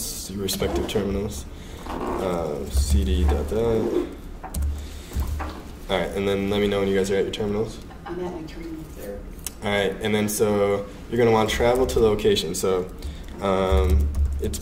your respective terminals. CD dot that. All right, and then let me know when you guys are at your terminals. I'm at my terminal. There. All right, and then so you're gonna want to travel to the location. So it's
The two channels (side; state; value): both; identical; correlation 1.00